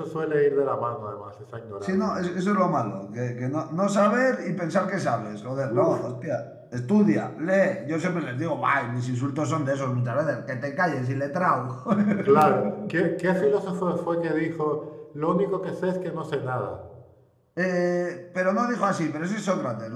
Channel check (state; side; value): identical; both; correlation 1.00